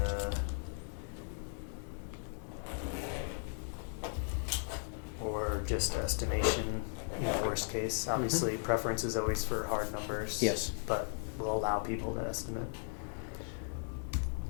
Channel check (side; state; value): right; silent; 53 dB below the other